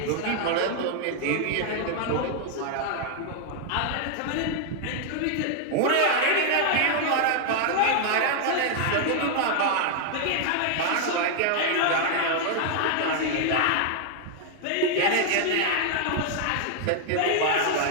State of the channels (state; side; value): different; both; correlation 0.00